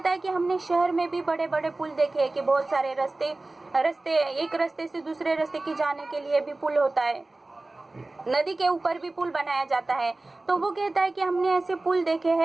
है कि हमने शहर में भी बड़े बड़े पुल देखे हैं कि बहुत सारे रास्ते एक रास्ते से दूसरे रास्ते की जाने के लिए भी पुल होता है, नदी के ऊपर भी पुल बनाया जाता है। तो वो कहता है कि हमने ऐसे पुल देखे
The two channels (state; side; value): quieter; left; 3.0 dB